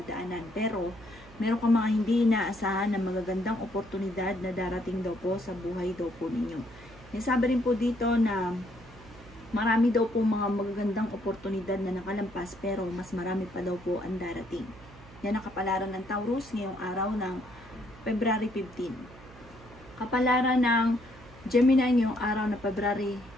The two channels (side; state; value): right; noise; hum, 21 dB below the sound